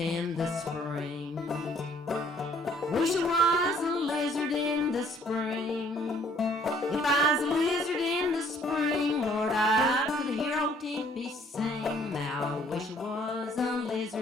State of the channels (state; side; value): normal; both; correlation 0.61